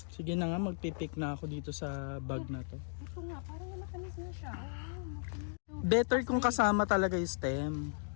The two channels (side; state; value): right; silent; digital silence